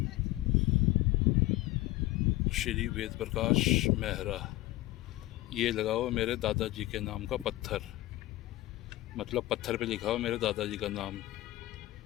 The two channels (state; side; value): quieter; right; 17.4 dB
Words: श्री वेद प्रकाश मेहरा, ये लगा हुआ मेरे दादाजी के नाम का पत्थर, मतलब पत्थर पे लिखा हुआ मेरे दादाजी का नाम।